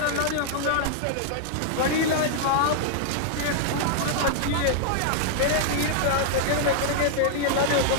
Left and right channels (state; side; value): different; both; correlation -0.01